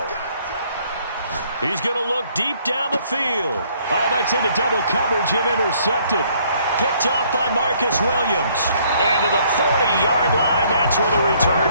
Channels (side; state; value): both; inverted; correlation -0.64